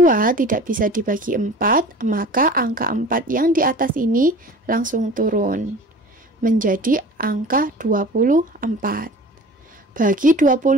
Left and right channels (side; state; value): both; normal; correlation 0.41